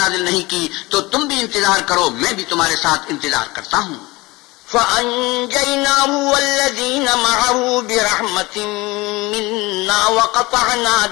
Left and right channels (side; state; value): right; quieter; 22.0 dB